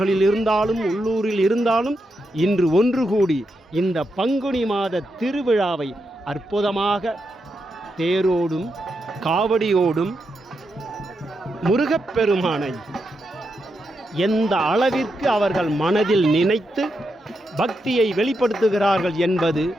இருந்தாலும் உள்ளூரில் இருந்தாலும் இன்று ஒன்று கூடி இந்த பங்குனி மாத திருவிழாவை அற்புதமாக தேரோடும் காவடியோடும் முருகப்பெருமானை எந்த அளவிற்கு அவர்கள் மனதில் நினைத்து பக்தியை வெளிப்படுத்துகிறார்கள் என்பது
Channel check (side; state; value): both; normal; correlation 0.85